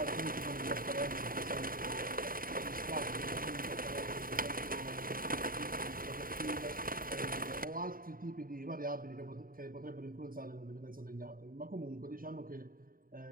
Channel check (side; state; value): left; late; 0.41 ms